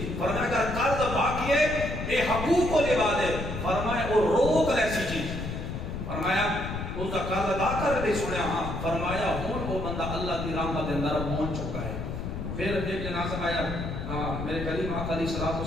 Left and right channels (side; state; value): left; noise; rumble, 5 dB below the sound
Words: فرمایا اگر قرض باقی ہے اے حقوق کو لے دے فرمایا وہ روک ایسی چیز فرمایا اس کا قرض ادا کر دے سنیا ہاں فرمایا ہون وہ بندہ اللہ کی رحمت اندر پہنچ چکا ہے پھر ایک جنازہ آیا میرے کریم آقا علیہ